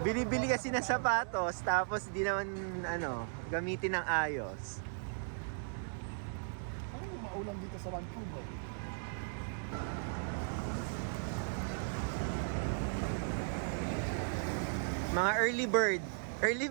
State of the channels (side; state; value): left; silent; digital silence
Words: Bili-bili kasi ng sapatos, tapos di naman, gamitin ng ayos. Ano yung maulan dito sa Vancouver? Mga early bird.